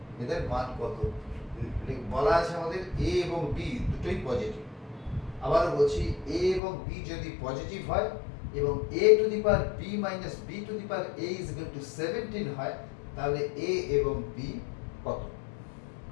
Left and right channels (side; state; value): right; drops out; at 6.6 s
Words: এদের মান কত? বলা আছে আমাদের a এবং b দুটোই পজিটিভ। আবারও বলছি, a এবং b যদি পজিটিভ হয় এবং a two the power b minus b to the power a is equal two 17 হয়, তাহলে a এবং b কত?